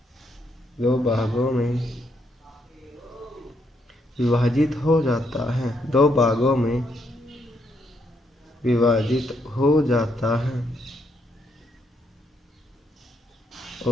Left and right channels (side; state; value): both; normal; correlation 0.76